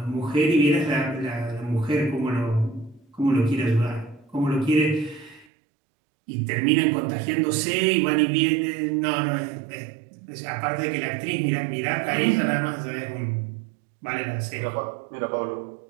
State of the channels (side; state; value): left; drops out; at 5.5 s